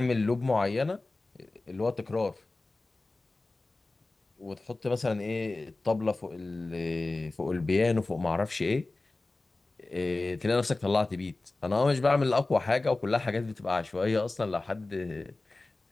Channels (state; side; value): quieter; right; 3.2 dB